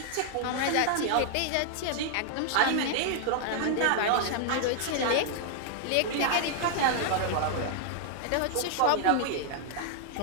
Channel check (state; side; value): different; both; correlation 0.00